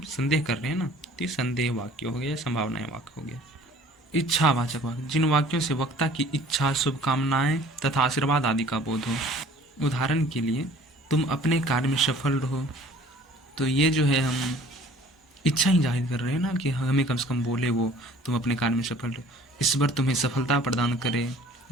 संदेह कर रहे हैं ना, तो ये संदेह वाक्य हो गया, संभावनाएं वाक्य हो गया। इच्छावाचक वाक्य, जिन वाक्यों से वक्ता की इच्छा, शुभकामनाएं तथा आशीर्वाद आदि का बोध हो। उदाहरण के लिए, तुम अपने कार्य में सफल रहो, तो ये जो है हम इच्छा ही जाहिर कर रहे हैं ना कि हमें कम से कम बोले वो तुम अपने कार्य में सफल रहो, ईश्वर तुम्हें सफलता प्रदान करे,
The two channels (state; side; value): normal; both; correlation 0.51